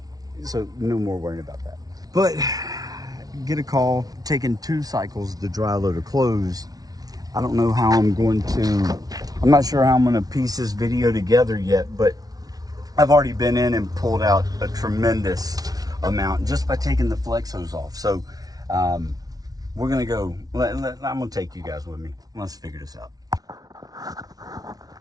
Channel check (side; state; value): left; late; 0.18 ms